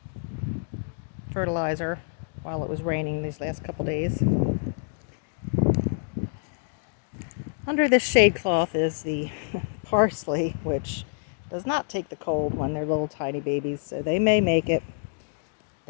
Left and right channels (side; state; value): right; silent; digital silence